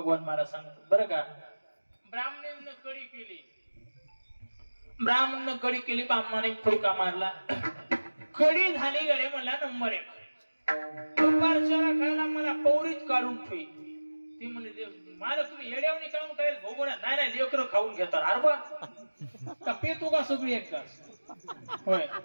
महाराज सांगतो बरं का, ब्राह्मणानं कडी केली, ब्राह्मणानं कडी केली, ब्राह्मणाने फुडका मारला. कडी झाली गडे म्हणला नंबर 1. दुपारच्याला खायला मला पौरीच काढून ठेवी. ती म्हणले मला तुम्ही येड्यावणी काढून काय भोगून नाही नाही लेकरं खाऊन घेतात. अरे बा का पेतो का सगळी एकदाच. होय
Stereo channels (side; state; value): both; inverted; correlation -1.00